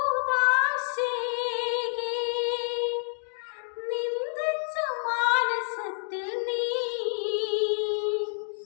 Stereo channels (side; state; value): right; silent; digital silence